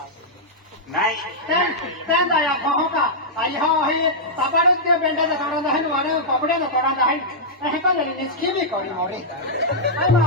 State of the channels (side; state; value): both; normal; correlation -0.09